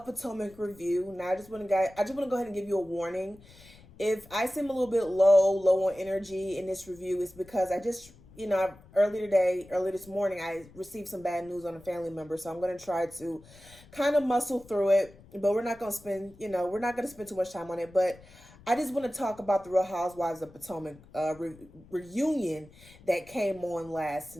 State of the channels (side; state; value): left; noise; rumble, 23 dB below the sound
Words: Potomac review. Now, I just want to go ahead and give you a warning. If I seem a little bit low on energy in this review, it's because I just, early this morning, I received some bad news on a family member. So I'm going to try to kind of muscle through it, but we're not going to spend too much time on it. But I just want to talk about the Real Housewives of Potomac reunion that came on last